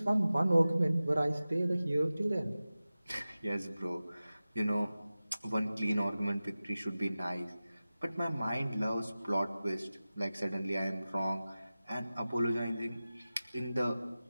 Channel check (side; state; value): both; inverted; correlation -0.96